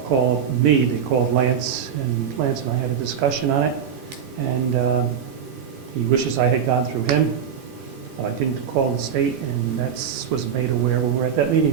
me, they called Lance, and Lance and I had a discussion on it, and he wishes I had gone through him. I didn't call the state, and that's was made aware when we were at that meeting.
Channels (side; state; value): left; quieter; 7.7 dB